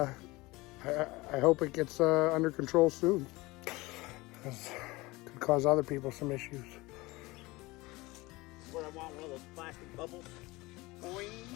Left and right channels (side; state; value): right; quieter; 21.8 dB